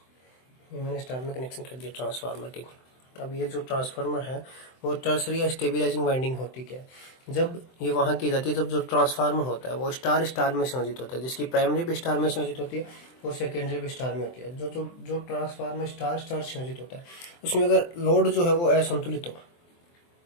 ये मैंने स्टार में कनेक्शन कर दिया ट्रांसफार्मर के। अब ये जो ट्रांसफार्मर है वो टर्सरी या स्टेबिलाइजिंग वाइंडिंग होती क्या है। जब ये वहां की जाती है जब जो ट्रांसफार्मर होता है वो स्टार स्टार में संयोजित होता है, जिसकी प्राइमरी भी स्टार में संयोजित होती है और सेकेंडरी भी स्टार में होती है। जो ट्रांसफार्मर स्टार स्टार संयोजित होता है उसमें अगर लोड जो है वो असंतुलित हो,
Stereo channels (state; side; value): late; right; 23 ms